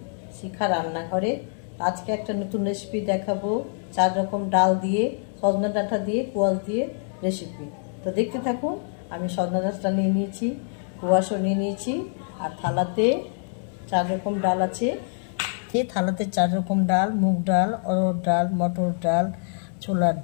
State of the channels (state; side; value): silent; right; 62 dB below the other